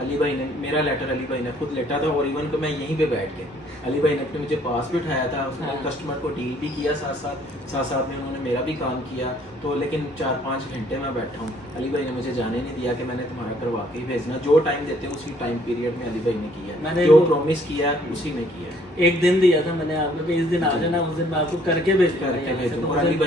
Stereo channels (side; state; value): both; normal; correlation 0.62